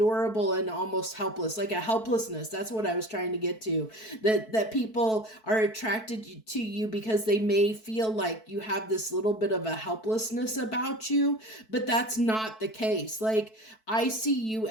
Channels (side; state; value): right; late; 4.6 ms